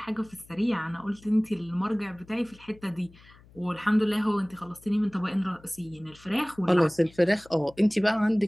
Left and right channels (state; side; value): noise; left; hum, 25 dB below the sound